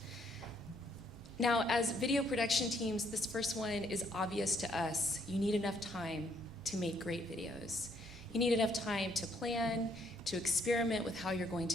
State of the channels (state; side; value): normal; both; correlation 0.68